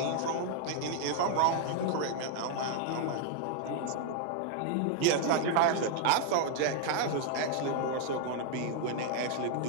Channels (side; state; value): both; different; correlation 0.00